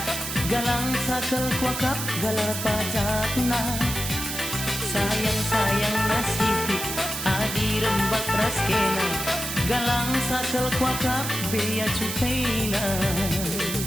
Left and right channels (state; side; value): noise; right; hiss, 5 dB below the sound